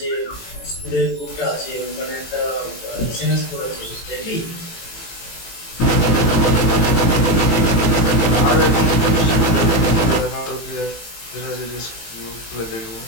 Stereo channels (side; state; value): right; late; 18 ms